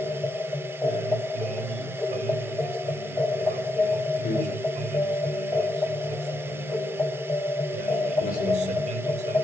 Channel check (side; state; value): both; normal; correlation 0.82